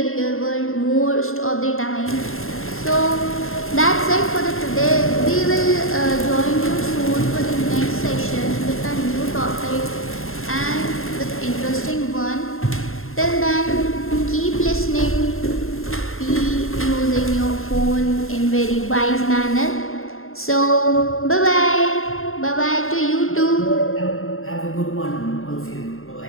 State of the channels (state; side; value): late; right; 0.61 ms